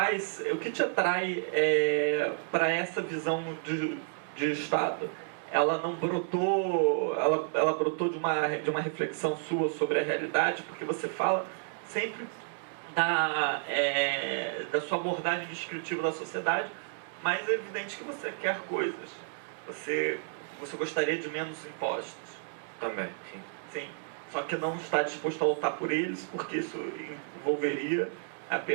atrai para essa visão de Estado? ela não brotou, ela brotou de uma reflexão sua sobre a realidade, porque você fala sempre da sua abordagem descritiva da sociedade, mas é evidente que você quer coisas. Você gostaria de menos impostos. Também, sim. Sim. Só que não está disposto a lutar por eles, porque isso envolveria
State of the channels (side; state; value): left; silent; digital silence